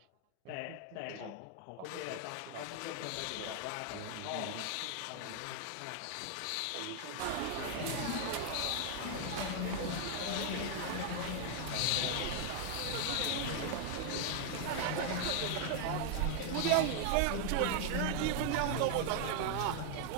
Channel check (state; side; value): different; both; correlation 0.00